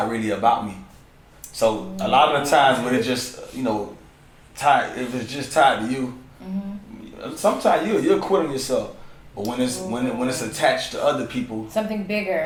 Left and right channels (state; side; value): identical; both; correlation 1.00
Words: really about me. So a lot of the times when it's just, tied, if it's just tied to you, sometimes you'll quit on yourself. But when it's attached to other people, something bigger,